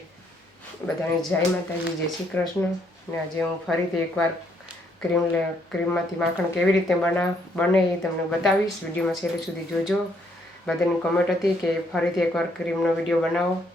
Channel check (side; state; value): both; normal; correlation 0.71